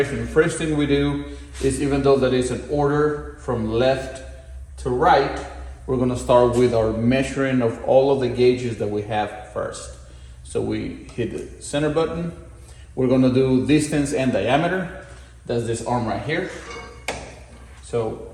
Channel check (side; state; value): both; identical; correlation 1.00